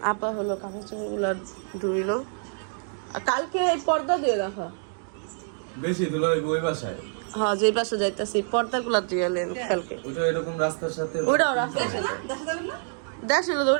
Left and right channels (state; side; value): silent; left; 56 dB below the other